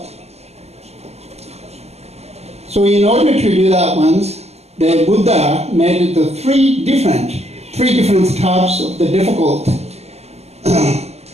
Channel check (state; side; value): late; left; 0.31 ms